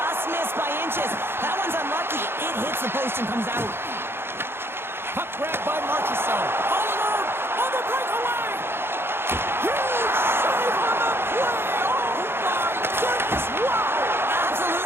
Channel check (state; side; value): late; left; 0.11 ms